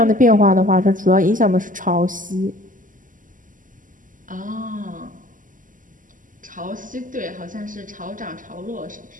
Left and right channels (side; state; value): left; late; 0.38 ms